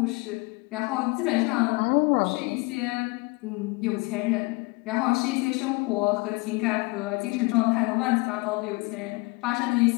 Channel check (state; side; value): quieter; right; 26.0 dB